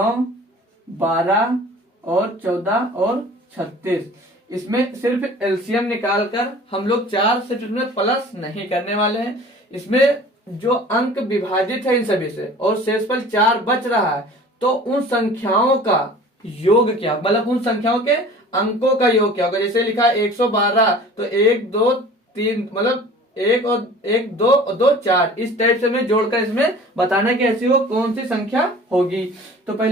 12 और 14 और 36। इसमें सिर्फ एलसीएम निकालकर हम लोग 4 से प्लस नहीं करने वाले हैं। इसमें जो अंक विभाजित है इन सभी से और शेषफल 4 बच रहा है, तो उन संख्याओं का योग क्या, मतलब उन संख्याओं के अंकों का योग क्या होगा। जैसे लिखा है 112, तो 1 2 3, मतलब 1 और 1 2 और 2 4, इस टाइप से हमें जोड़कर इसमें बताना कि ऐसी वो कौन सी संख्या होगी। तो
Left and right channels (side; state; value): both; normal; correlation 0.45